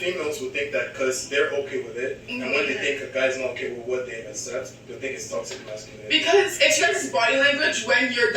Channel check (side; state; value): both; identical; correlation 1.00